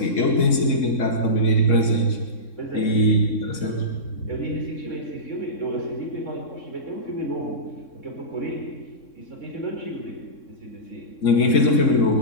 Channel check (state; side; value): late; right; 3.6 ms